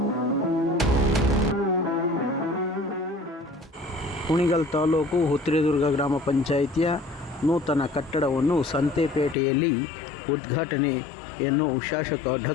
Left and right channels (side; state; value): right; drops out; at 9.3 s